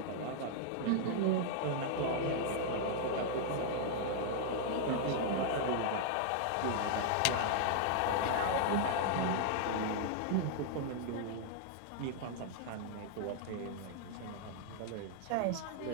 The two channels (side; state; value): both; different; correlation -0.01